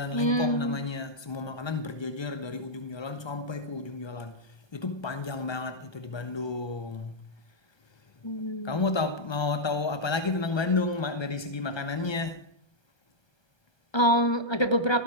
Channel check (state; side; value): late; right; 1.3 ms